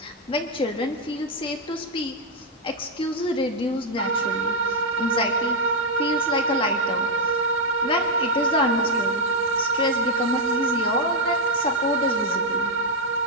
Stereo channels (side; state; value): both; normal; correlation 0.00